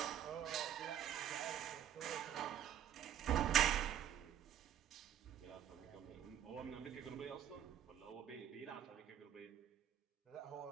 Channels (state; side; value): quieter; left; 10.3 dB